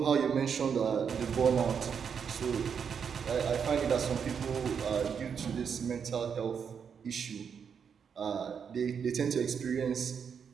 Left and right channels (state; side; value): quieter; left; 6.9 dB